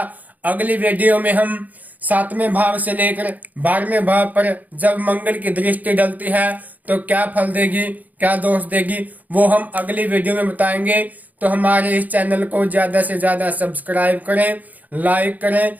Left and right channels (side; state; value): left; late; 0.079 ms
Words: अगली वीडियो में हम 7वें भाव से लेकर 12वें भाव पर जब मंगल की दृष्टि डलती है तो क्या फल देगी, क्या दोष देगी, वो हम अगली वीडियो में बताएंगे। तो हमारे इस चैनल को ज्यादा से ज्यादा सब्सक्राइब करें, लाइक करें,